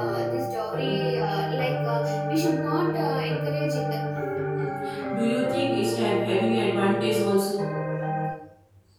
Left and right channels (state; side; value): identical; both; correlation 1.00